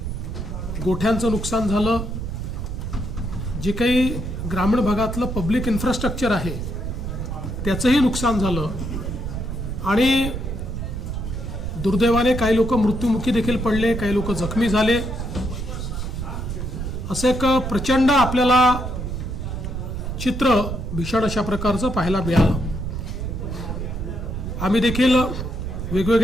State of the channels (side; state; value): right; noise; rumble, 5 dB below the sound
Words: गोठ्यांचं नुकसान झालं. जे काही ग्रामीण भागातलं पब्लिक इन्फ्रास्ट्रक्चर आहे त्याचंही नुकसान झालं आणि दुर्दैवाने काही लोक मृत्युमुखी देखील पडले, काही लोक जखमी झाले. असं एक प्रचंड आपल्याला चित्र भीषण अशा प्रकारचं पाहायला मिळालं. आम्ही देखील